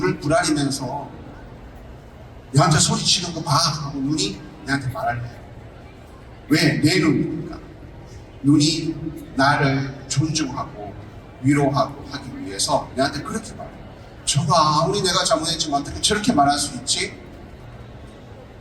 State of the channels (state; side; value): identical; both; correlation 1.00